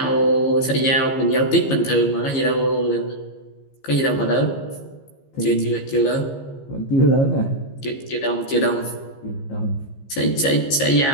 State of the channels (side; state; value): right; late; 15 ms